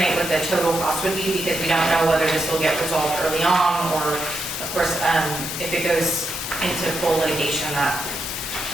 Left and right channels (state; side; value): normal; both; correlation 0.83